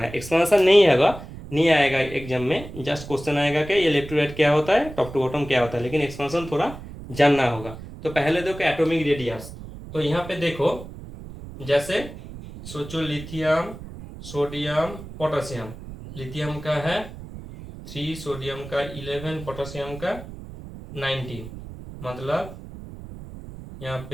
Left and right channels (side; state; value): right; noise; rumble, 13 dB below the sound